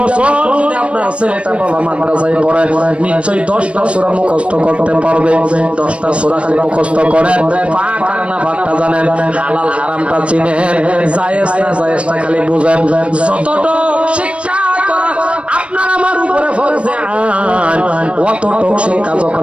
বছর যদি আপনার ছেলেটা বাবা মাদ্রাসায় পড়ে নিশ্চয়ই 10টা সূরা মুখস্থ করতে পারবে 10টা সূরা খালি মুখস্থ করেন পাক আর না পাকটা জানেন হালাল হারামটা চিনেন জায়েজ না জায়েজটা খালি বুঝেন যতটুকু শিক্ষা করা আপনার আমার উপরে ফরজে আইন অতটুকু শিক্ষা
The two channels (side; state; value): left; late; 0.060 ms